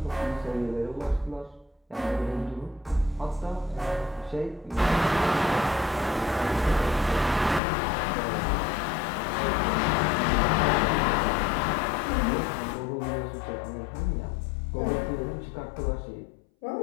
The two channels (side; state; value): right; drops out; at 7.6 s